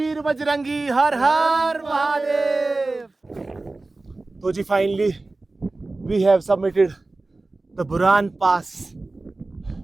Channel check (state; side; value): quieter; left; 3.2 dB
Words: बजरंगी, हर हर महादेव। तो जी finally we have submitted the Buran pass